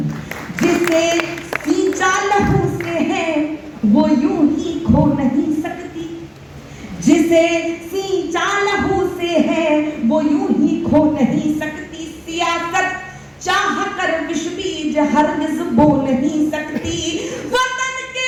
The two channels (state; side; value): identical; both; correlation 1.00